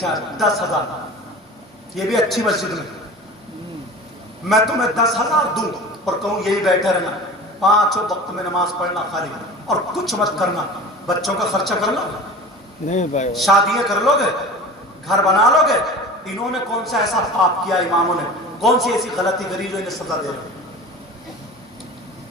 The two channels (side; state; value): both; normal; correlation 0.36